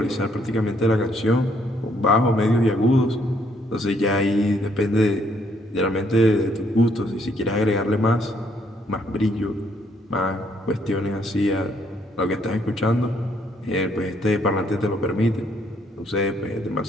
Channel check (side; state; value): both; normal; correlation 0.69